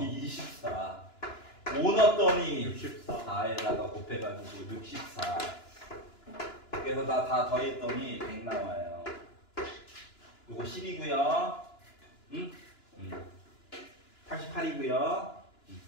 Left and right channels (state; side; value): late; right; 2.9 ms